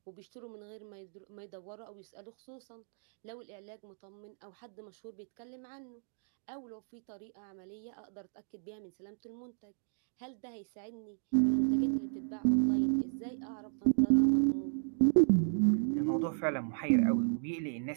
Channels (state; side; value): silent; left; digital silence